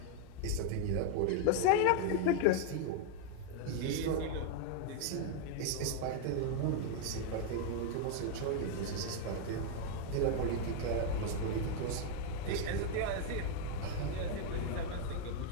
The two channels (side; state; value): both; different; correlation 0.00